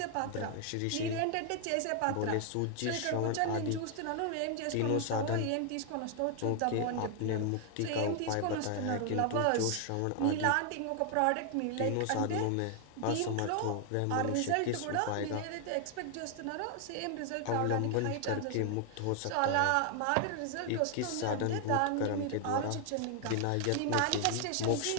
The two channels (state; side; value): different; both; correlation 0.00